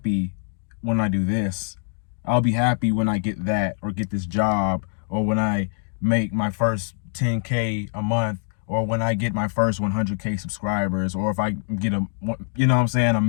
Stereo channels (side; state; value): right; silent; 63 dB below the other